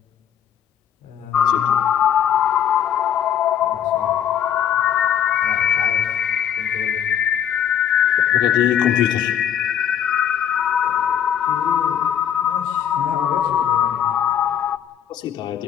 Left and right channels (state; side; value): quieter; right; 9.4 dB